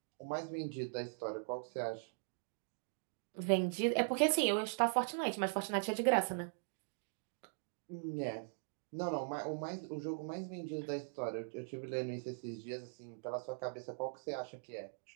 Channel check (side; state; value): left; silent; digital silence